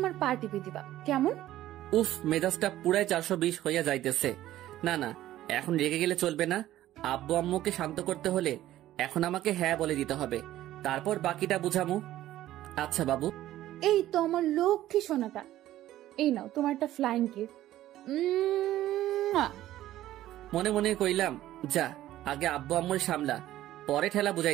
পা টিপে দিবা, কেমন? উফ, মেজাজটা পুরাই 420 হইয়া যাইতেছে। না না, এখন রেগে গেলে চলবে না। আব্বু আম্মুকে শান্ত করতে হলে এখন আমাকে হ্যাঁ বলে দিতে হবে, তারপর বাকিটা বুঝামু। আচ্ছা বাবু। এই তো আমার লক্ষ্মী সোনাটা, এই নাও তোমার একটা ফ্লাইং কিস। মনে মনে কইলাম, যা আগে আব্বু আম্মুর সামলা, পরে ঠেলা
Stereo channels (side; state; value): left; quieter; 14.0 dB